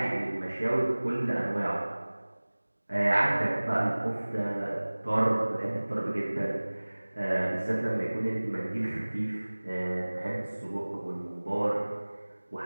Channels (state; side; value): inverted; both; correlation -1.00